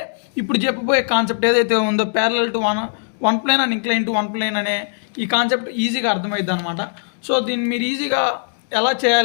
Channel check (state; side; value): silent; right; digital silence